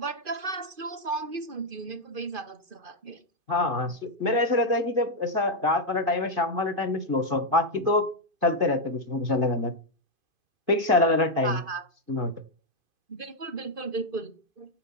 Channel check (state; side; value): late; left; 2.5 ms